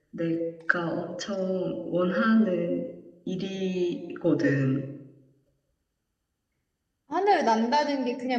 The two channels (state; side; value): identical; both; correlation 1.00